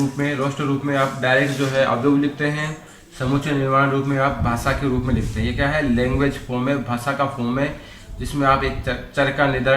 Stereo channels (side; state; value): both; identical; correlation 1.00